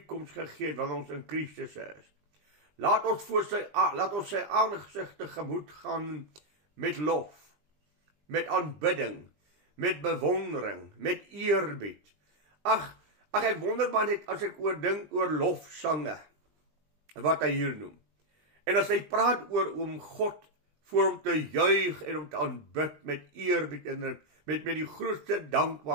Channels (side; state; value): left; late; 20 ms